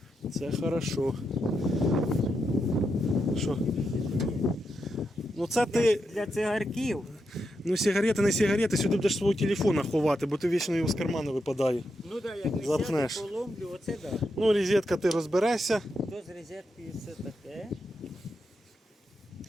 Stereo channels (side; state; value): both; normal; correlation 0.85